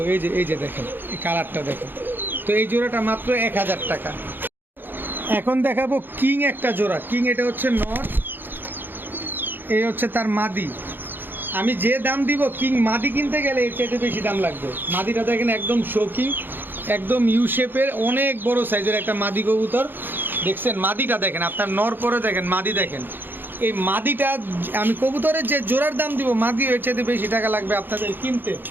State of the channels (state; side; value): late; left; 0.096 ms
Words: এই যে দেখেন এই কালারটা দেখেন। তো এই জোড়াটা মাত্র 1000 টাকা। এখন দেখাবো কিং একটা জোড়া। কিং এটা হচ্ছে নর, এই হচ্ছে তার মাদি। আমি যে দাম দিব কিং মাদি কিনতে গেলে এর চাইতে বেশি দাম লাগবে। মাদিটা দেখেন একদম শৌখিন, একদম ইউ শেপের, অনেক বড় সাইজের একটা মাদি কবুতর দেখছেন। মাদিটা দেখেন, আপনার নর পরে দেখেন, মাদি দেখেন। এই মাদিটা আমি কবুতরের যে জোড়ার দাম দিব, মাদি এর চাইতে বেশি টাকা লাগবে আপনাদের কিনতে।